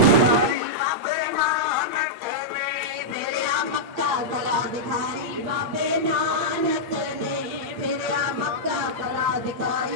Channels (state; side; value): late; left; 8.8 ms